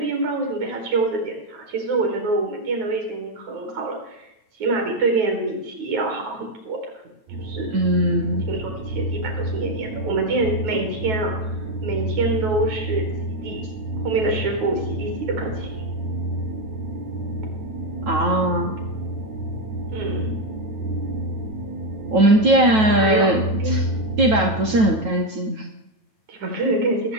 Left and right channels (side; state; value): left; late; 9.2 ms